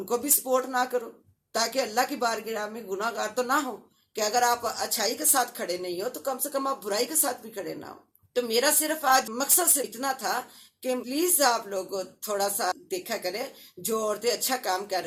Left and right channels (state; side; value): identical; both; correlation 1.00